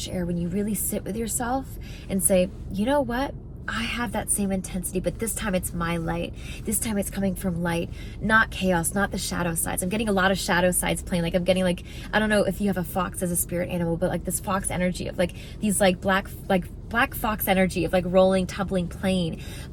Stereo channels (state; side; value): identical; both; correlation 1.00